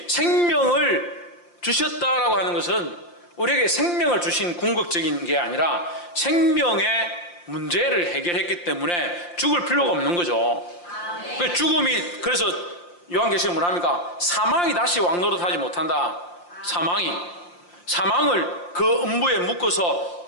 생명을 주셨다라고 하는 것은 우리에게 생명을 주신 궁극적인 게 아니라 생명의 문제를 해결했기 때문에 죽을 필요가 없는 거죠. 죽음이, 그래서 요한계시록 뭐랍니까? 사망이 다시 왕노릇하지 못한다. 사망을 그 음부에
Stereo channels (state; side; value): late; right; 5.7 ms